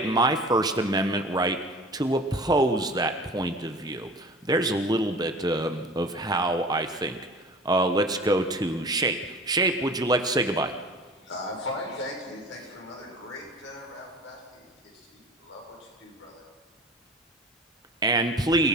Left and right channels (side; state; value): both; normal; correlation 0.40